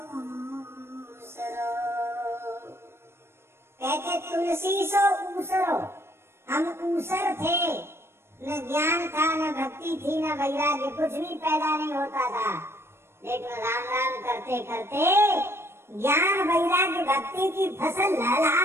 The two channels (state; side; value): late; left; 0.12 ms